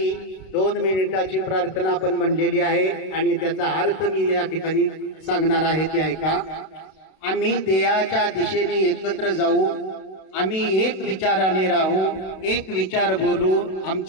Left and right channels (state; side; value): late; right; 31 ms